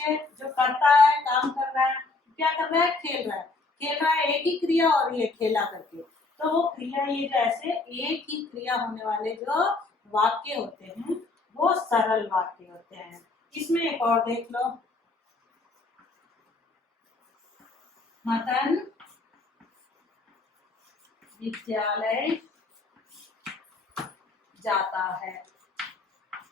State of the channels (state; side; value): quieter; right; 3.6 dB